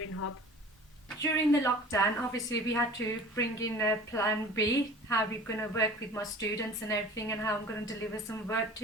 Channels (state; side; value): normal; both; correlation 0.42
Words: Hub. During the lockdown, obviously we had to bring in a plan B, how we're going to work with my students and everything, and how I'm going to deliver some work